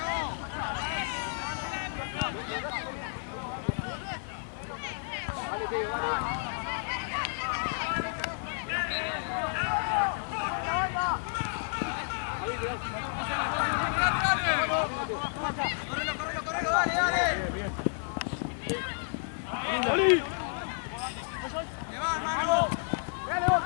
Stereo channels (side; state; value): right; silent; 55 dB below the other